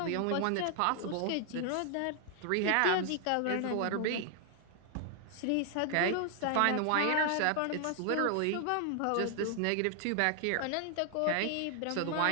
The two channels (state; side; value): different; both; correlation 0.00